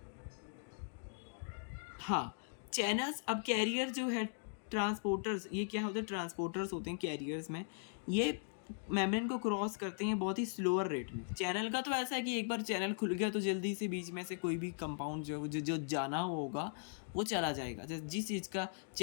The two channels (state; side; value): silent; right; digital silence